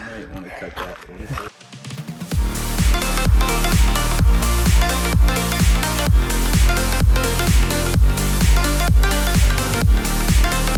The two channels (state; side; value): identical; both; correlation 1.00